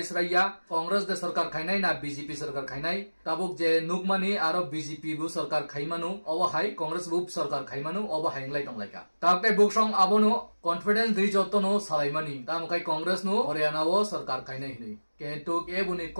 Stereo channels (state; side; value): inverted; both; correlation -1.00